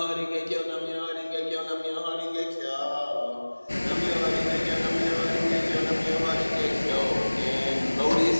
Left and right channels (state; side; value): inverted; both; correlation -1.00